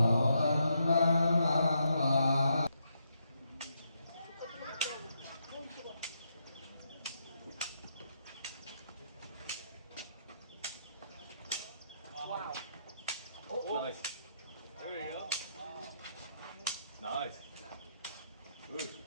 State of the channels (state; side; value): inverted; both; correlation -0.79